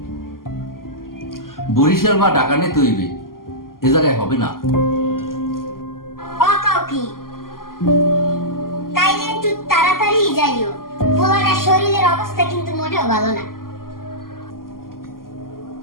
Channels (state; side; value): late; right; 0.92 ms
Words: বরিশাল বা ঢাকা নিতে হইবে এ জায়গায় হবে না ও কও কি তাইলে একটু তাড়াতাড়ি যাইও পোলাটার শরীরের অবস্থা কিন্তু মোটেও ভালো না